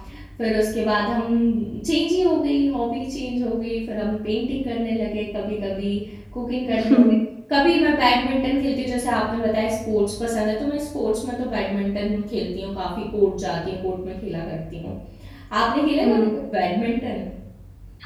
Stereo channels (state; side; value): identical; both; correlation 1.00